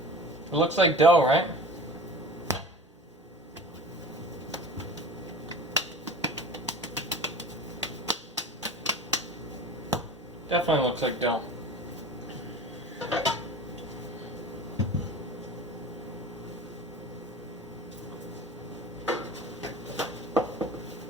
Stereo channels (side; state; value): both; normal; correlation 0.38